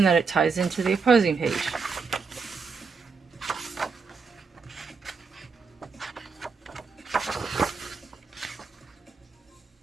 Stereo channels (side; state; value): left; quieter; 5.0 dB